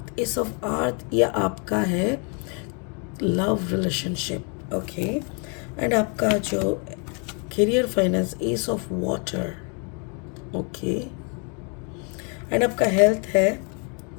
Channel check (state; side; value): quieter; right; 36.8 dB